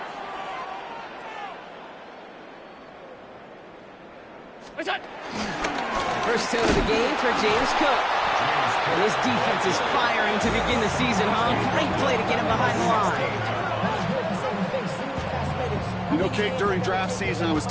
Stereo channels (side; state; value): both; identical; correlation 1.00